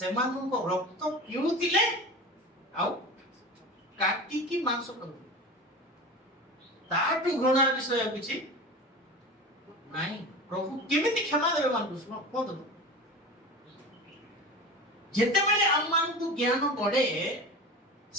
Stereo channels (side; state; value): both; normal; correlation 0.32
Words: ରକ୍ତ ପିଉଥିଲେ ଆଉ କାଟିକି ମାଂସ କରୁଥିଲେ। ତାଠୁ ଘୃଣାର ବିଷୟ କିଛି ନାହିଁ। ପ୍ରଭୁ କେମିତି କ୍ଷମା ଦେବେ ମାନଙ୍କୁ? କୁହନ୍ତୁ। ଯେତେବେଳେ ଆମମାନଙ୍କୁ ଜ୍ଞାନ ବଢେ,